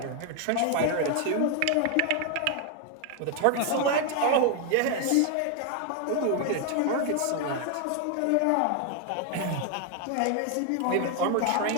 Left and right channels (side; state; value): both; different; correlation 0.01